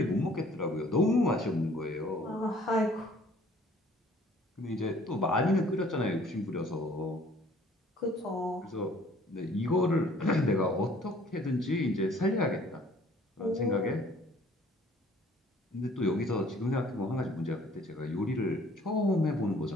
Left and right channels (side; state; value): both; normal; correlation 0.56